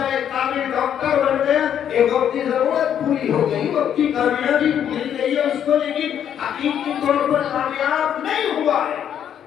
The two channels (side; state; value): right; quieter; 9.3 dB